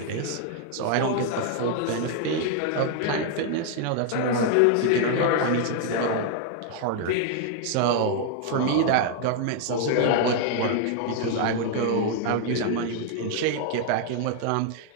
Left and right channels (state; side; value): different; both; correlation 0.00